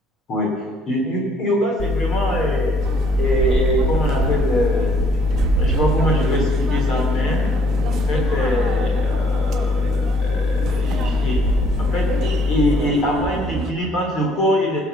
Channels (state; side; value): normal; both; correlation 0.63